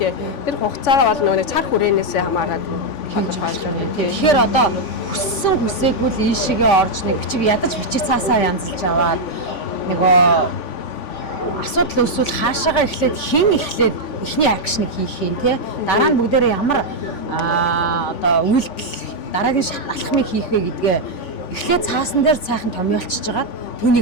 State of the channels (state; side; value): late; right; 3.5 ms